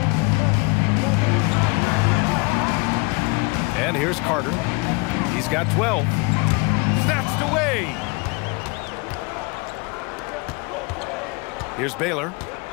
And here's Carter. He's got 12. Snatched away. Here's Baylor.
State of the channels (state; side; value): quieter; right; 29.2 dB